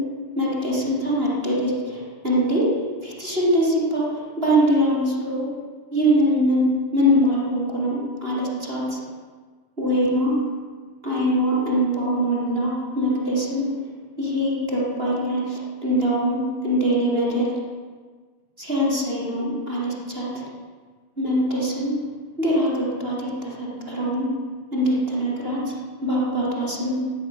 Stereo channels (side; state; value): left; late; 2.9 ms